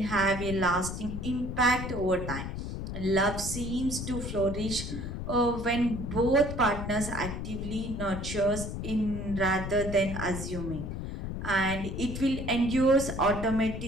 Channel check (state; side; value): noise; left; rumble, 5 dB below the sound